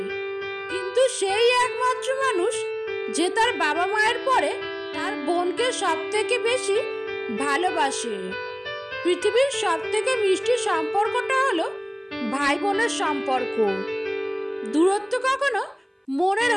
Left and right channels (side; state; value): both; identical; correlation 1.00